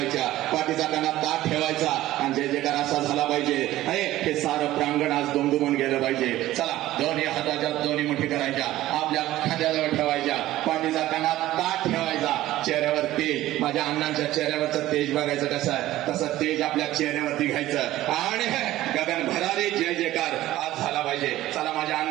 पाठीचा कानात ताट ठेवायचा आणि जय जयकार असा झाला पाहिजे. हे सारं प्रांगण आज दुमदुमून गेलं पाहिजे. चला, दोन्ही हाताच्या दोन्ही मुठी करायच्या, आपल्या खांद्याजवळ ठेवायच्या, पाठीचा कानात ताट ठेवायचा, चेहऱ्यावर तेज, माझ्या अण्णांच्या चेहऱ्यावरचं तेज बघायचं कसं आहे, तसं तेज आपल्या चेहऱ्यावरती घ्यायचं आणि गगन भरारी जय जयकार आज झाला पाहिजे. चला, माझ्या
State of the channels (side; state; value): left; quieter; 15.3 dB